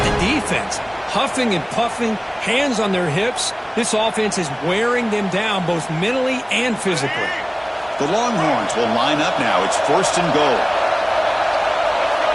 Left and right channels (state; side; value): identical; both; correlation 1.00